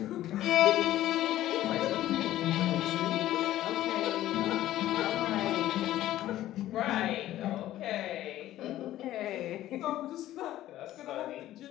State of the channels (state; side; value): quieter; right; 14.0 dB